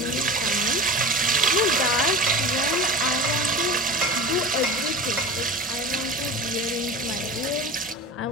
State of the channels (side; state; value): both; normal; correlation 0.32